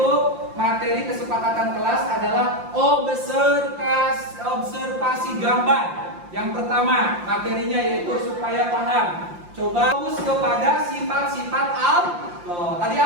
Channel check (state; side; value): late; left; 5.7 ms